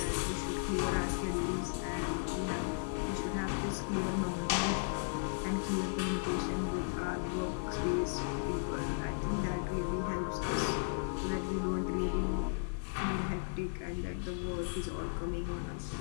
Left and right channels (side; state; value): right; silent; digital silence